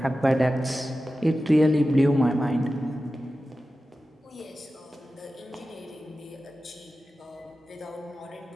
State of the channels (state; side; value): normal; both; correlation 0.94